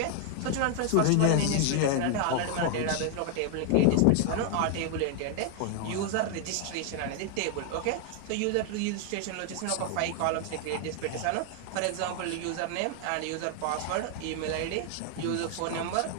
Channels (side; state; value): both; different; correlation 0.00